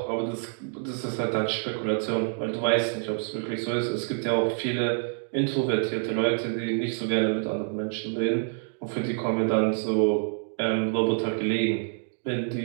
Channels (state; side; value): silent; left; 60 dB below the other